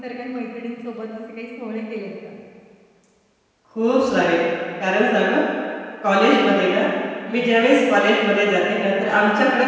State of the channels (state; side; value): identical; both; correlation 1.00